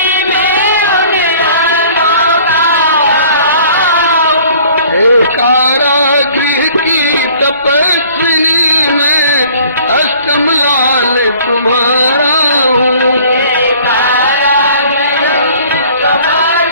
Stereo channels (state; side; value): inverted; both; correlation -0.52